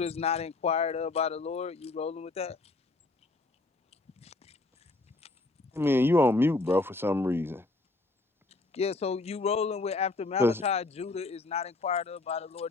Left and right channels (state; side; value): quieter; right; 3.3 dB